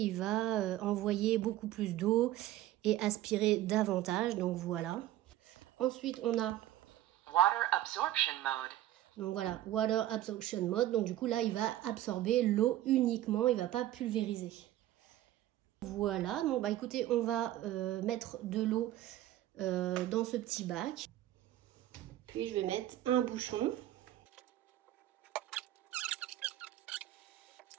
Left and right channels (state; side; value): quieter; left; 13.9 dB